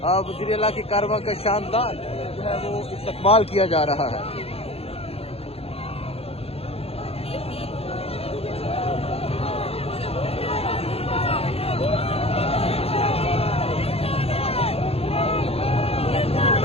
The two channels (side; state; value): right; late; 0.29 ms